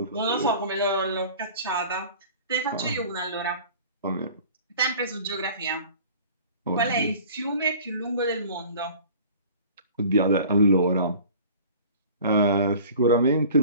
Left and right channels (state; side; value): inverted; both; correlation -0.45